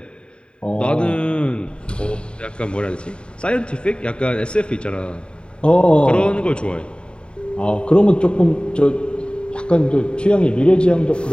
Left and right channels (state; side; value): late; right; 0.052 ms